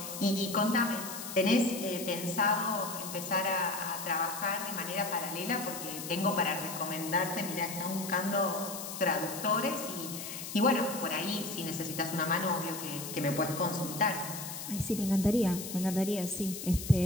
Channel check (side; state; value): left; noise; hiss, 8 dB below the sound